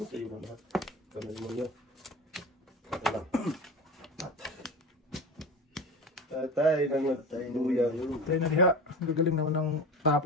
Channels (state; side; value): normal; both; correlation 0.31